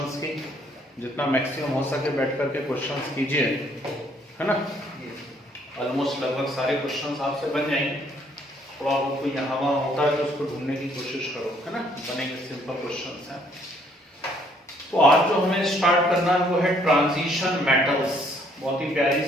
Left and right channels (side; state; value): both; normal; correlation 0.65